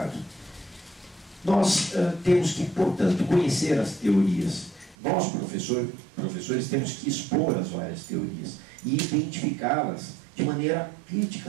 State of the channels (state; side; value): drops out; left; at 5.0 s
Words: Nós temos que, portanto, conhecer as teorias. Nós, professores, temos que expor as várias teorias e identificá-las de maneira